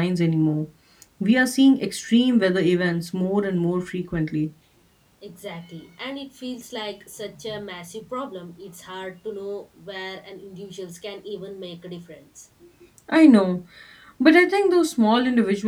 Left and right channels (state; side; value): identical; both; correlation 1.00